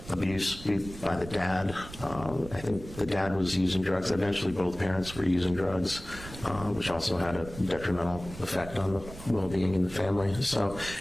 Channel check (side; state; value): right; noise; rumble, 14 dB below the sound